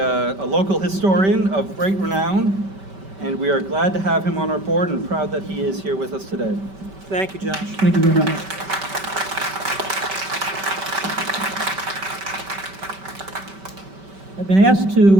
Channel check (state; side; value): late; left; 5.2 ms